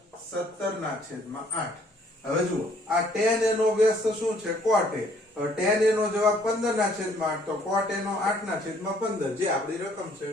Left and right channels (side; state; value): both; normal; correlation 0.62